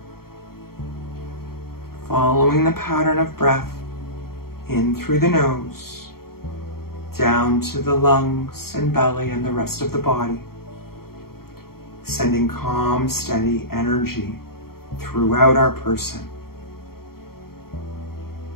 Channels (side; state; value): right; late; 0.94 ms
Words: Following the pattern of breath in through the nose, down to the lungs and belly and the rest of the body, sending calm, steady energy throughout our person.